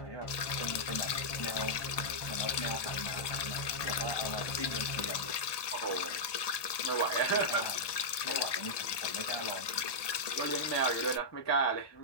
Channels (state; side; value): late; right; 1.2 ms